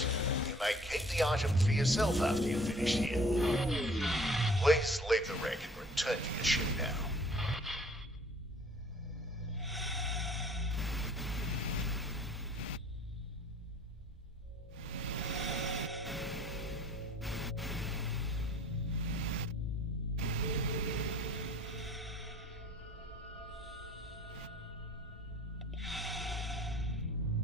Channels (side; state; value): both; normal; correlation 0.53